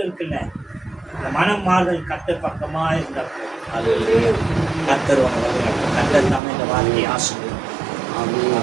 இருக்குல்ல, அந்த மனம் மாறுதல் கர்த்தர் பக்கமா இருந்தப்போ அது கர்த்தர் தாமே இந்த வார்த்தையை ஆசீர்வதிப்பார்.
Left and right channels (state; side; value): drops out; left; at 6.4 s